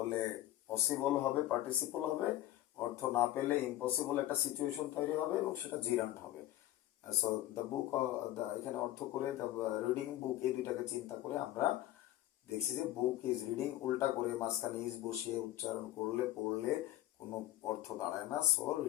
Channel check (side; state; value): right; quieter; 14.6 dB